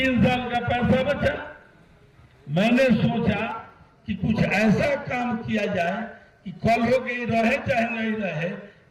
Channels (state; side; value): identical; both; correlation 1.00